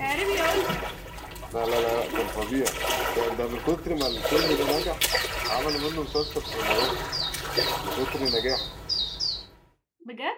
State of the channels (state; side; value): identical; both; correlation 1.00